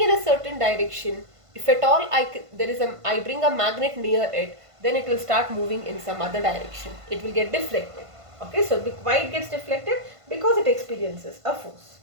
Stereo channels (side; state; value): left; late; 1.5 ms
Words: in a certain direction. If at all I bring a magnet near it, then it will start moving in some other direction. It will get deflected. Okay, so why it gets deflected? Because it experiences a force.